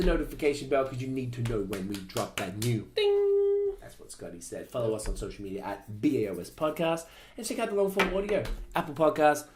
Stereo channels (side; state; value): both; identical; correlation 1.00